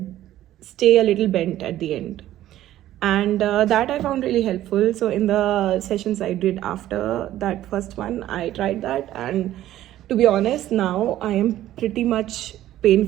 stay a little bent at the end, and that I found really helpful. So in the sessions I did after that first one, I tried that, and to be honest, now I am pretty much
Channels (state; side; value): quieter; left; 13.5 dB